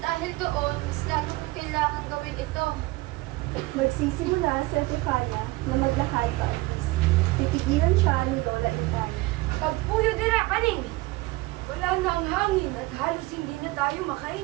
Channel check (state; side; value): quieter; left; 21.2 dB